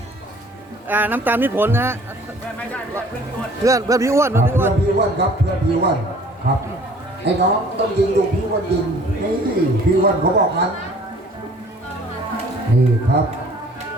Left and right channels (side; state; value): both; normal; correlation 0.53